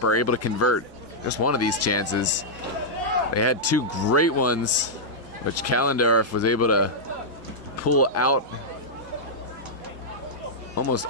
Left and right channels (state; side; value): normal; both; correlation -0.08